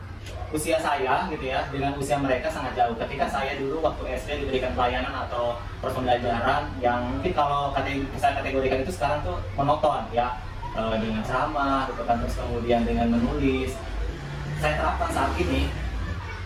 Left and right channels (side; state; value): both; identical; correlation 1.00